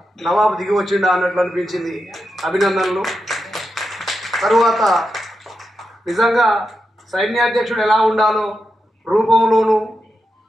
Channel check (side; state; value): both; normal; correlation 0.87